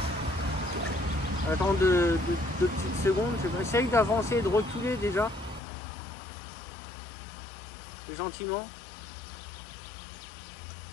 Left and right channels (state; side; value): drops out; right; at 5.6 s